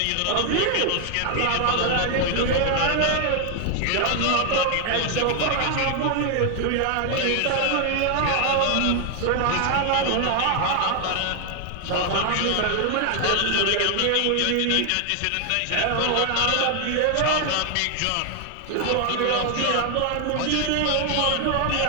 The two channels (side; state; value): both; different; correlation 0.00